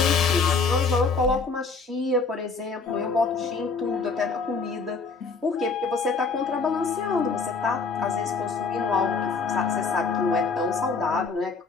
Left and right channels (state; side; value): quieter; right; 4.5 dB